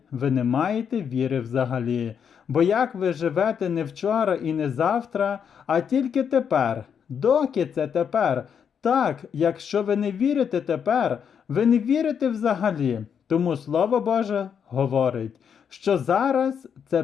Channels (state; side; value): quieter; right; 7.5 dB